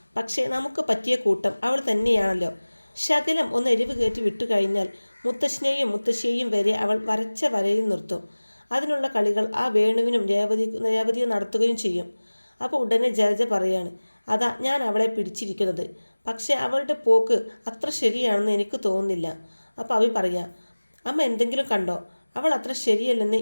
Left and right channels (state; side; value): inverted; both; correlation -1.00